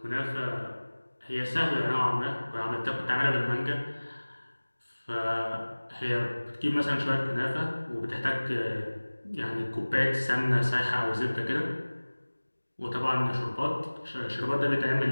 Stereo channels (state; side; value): inverted; both; correlation -1.00